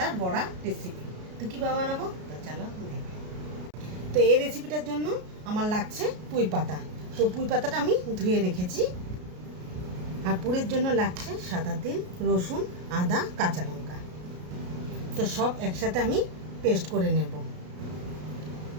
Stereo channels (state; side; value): late; left; 33 ms